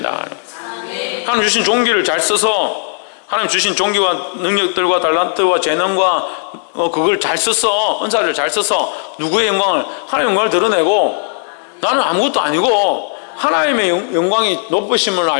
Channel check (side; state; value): right; silent; 69 dB below the other